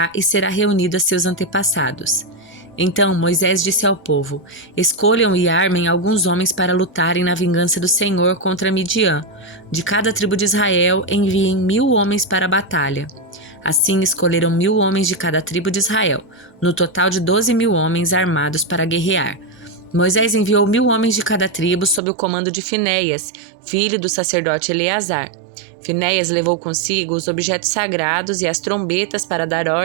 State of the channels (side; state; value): left; drops out; at 22.0 s